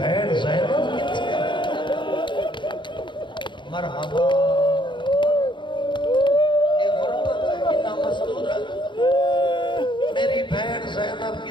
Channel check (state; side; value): late; right; 0.23 ms